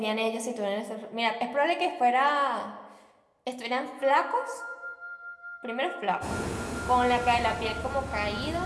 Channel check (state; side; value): identical; both; correlation 1.00